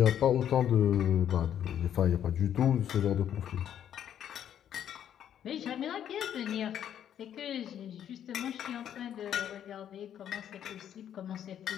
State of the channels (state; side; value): quieter; right; 9.9 dB